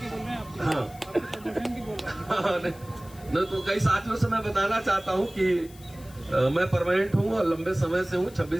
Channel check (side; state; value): left; noise; hiss, 22 dB below the sound